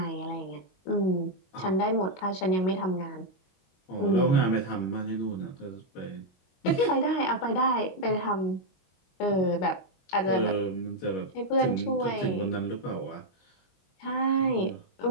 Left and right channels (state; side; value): late; right; 22 ms